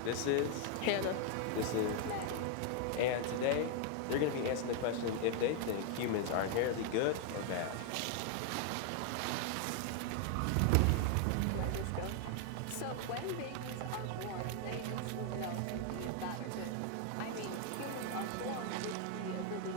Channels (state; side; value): different; both; correlation 0.01